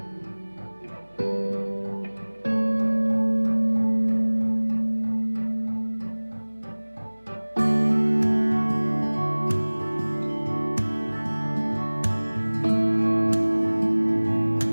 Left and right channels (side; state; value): both; inverted; correlation -1.00